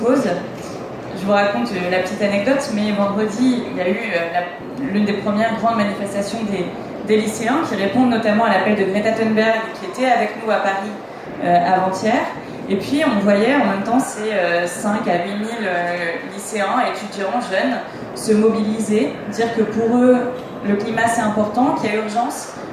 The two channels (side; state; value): both; identical; correlation 1.00